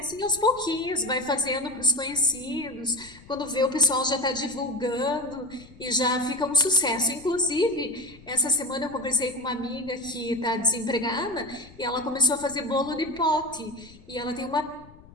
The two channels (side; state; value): left; noise; rumble, 22 dB below the sound